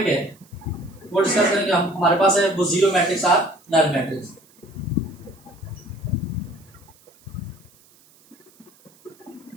है वो डिस्कस करेंगे हम, हमारे पास है वो जीरो मैट्रिक्स और नल मैट्रिक्स।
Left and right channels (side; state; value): right; noise; hiss, 29 dB below the sound